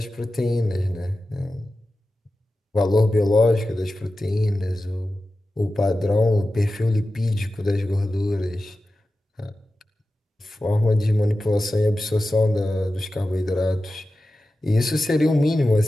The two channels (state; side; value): normal; both; correlation 0.93